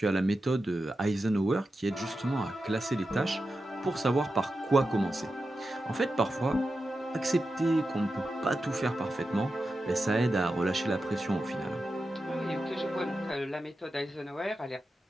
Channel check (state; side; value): normal; both; correlation 0.90